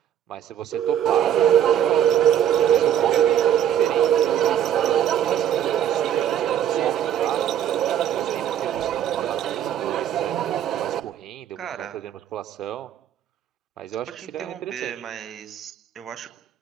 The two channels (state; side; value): quieter; left; 10.2 dB